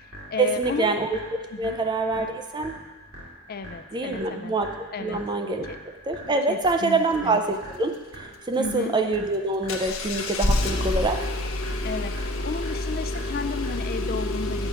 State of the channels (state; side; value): normal; both; correlation 0.39